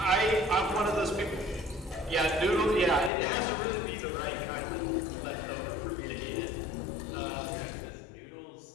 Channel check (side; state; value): right; drops out; at 3.1 s